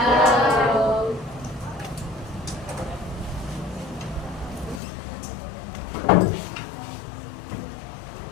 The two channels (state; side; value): drops out; right; at 4.8 s